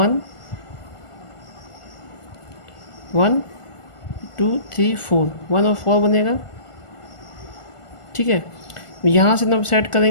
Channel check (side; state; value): right; late; 1.4 ms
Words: 1 2 3 4, 1 और 4 बनेगा। ठीक है, यहाँ से हम सेट